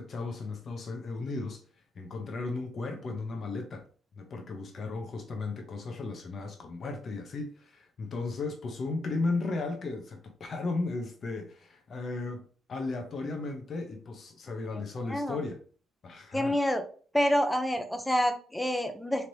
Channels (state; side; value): normal; both; correlation 0.87